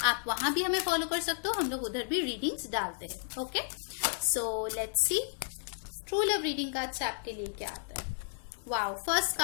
आप वहां भी हमें फॉलो कर सकते हो, हम लोग उधर भी रीडिंग्स डालते हैं। Okay, so let's C true love reading card से आपके लिए क्या आता है। वाओ, फर्स्ट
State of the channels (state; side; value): silent; right; 56 dB below the other